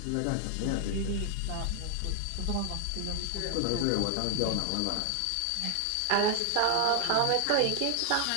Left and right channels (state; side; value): different; both; correlation 0.00